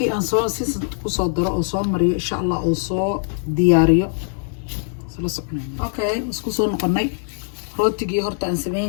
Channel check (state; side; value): silent; right; digital silence